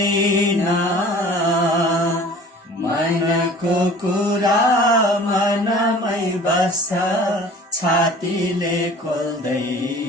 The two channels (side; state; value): both; normal; correlation 0.45